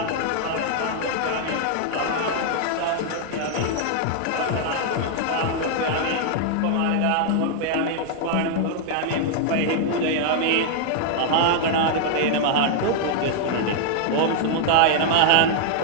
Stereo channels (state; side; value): different; both; correlation 0.00